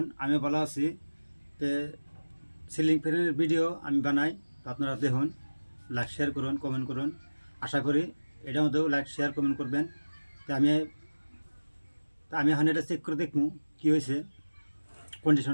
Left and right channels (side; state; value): both; inverted; correlation -1.00